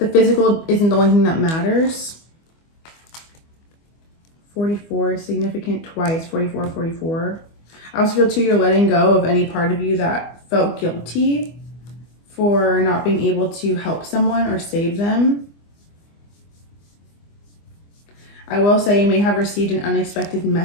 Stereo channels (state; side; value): late; right; 25 ms